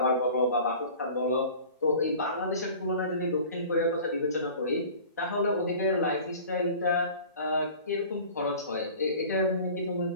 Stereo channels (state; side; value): inverted; both; correlation -0.43